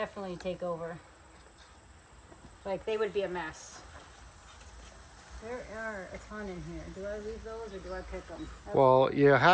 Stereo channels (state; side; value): identical; both; correlation 1.00